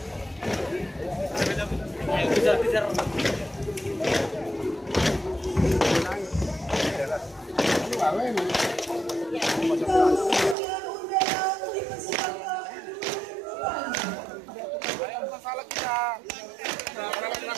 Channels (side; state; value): left; drops out; at 10.6 s